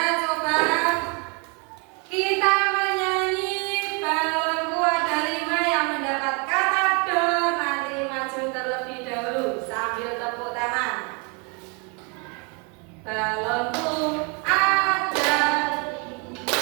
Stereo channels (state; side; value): quieter; left; 33.4 dB